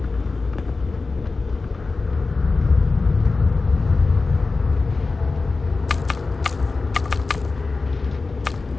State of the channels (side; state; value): right; quieter; 3.9 dB